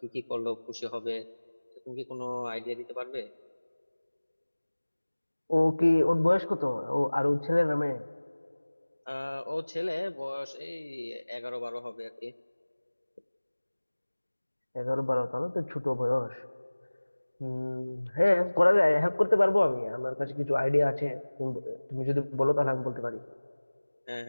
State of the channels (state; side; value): inverted; both; correlation -1.00